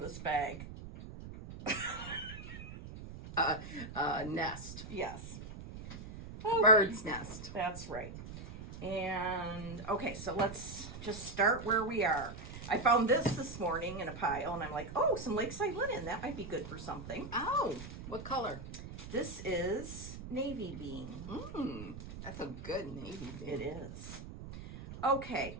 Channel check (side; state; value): right; noise; rumble, 11 dB below the sound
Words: this bag. Nest. Yes. Bird's nest. That's right. And, okay, so let's just start where we are. I found this morning in a pile, and I'm like, oh, some Lakeside linen. That might be good for something. Oh, what color? This is navy bean. That's a good navy bean. It is. Okay.